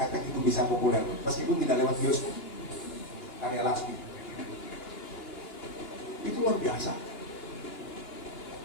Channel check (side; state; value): right; late; 2.9 ms